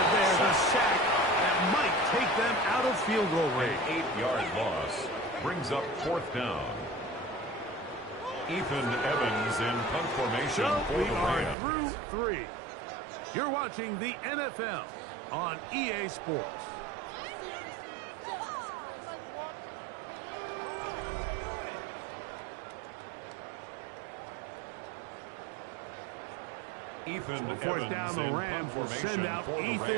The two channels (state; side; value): drops out; left; at 11.6 s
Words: there, the sack that might take them out of field goal range. An 8-yard loss brings up 4th down. Ethan Evans in punt formation So for we the are Rams. through 3. You're watching the NFL on EA Sports. Ethan So fourth Evans down, the in Rams punt will send formation out for the